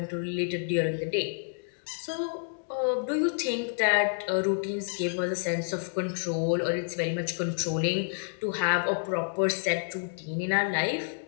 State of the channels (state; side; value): silent; right; digital silence